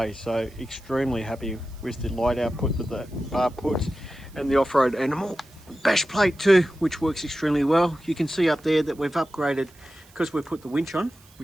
so extremely happy with the light output that the bar puts. And the Offroad Animal bash plate too, which works extremely well. You can see up there that we've upgraded because we've put the winch on,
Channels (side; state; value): right; noise; hiss, 27 dB below the sound